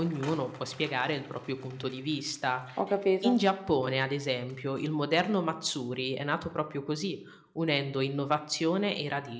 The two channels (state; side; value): identical; both; correlation 1.00